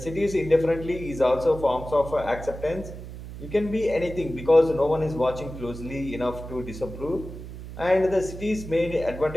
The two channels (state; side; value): noise; right; hum, 11 dB below the sound